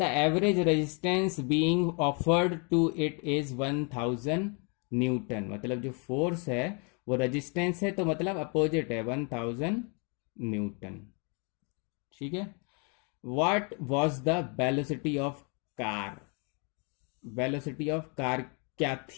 average resistance being offered to it is 1000 newton, मतलब जो फोर्स है वो रेजिस्टेंस है, तो मतलब अपोजिट है 1000 न्यूटन, ठीक है। What was the velocity of car, velocity of car क्या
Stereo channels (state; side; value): quieter; right; 35.9 dB